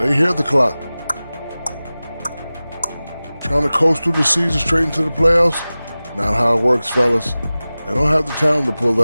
hear the clock. Trying to coast through the season straight into the playoffs? Not how it works, fellas. They don't have the talent to pull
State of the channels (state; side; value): inverted; both; correlation -0.97